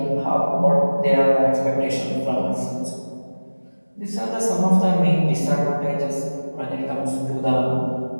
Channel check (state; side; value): inverted; both; correlation -1.00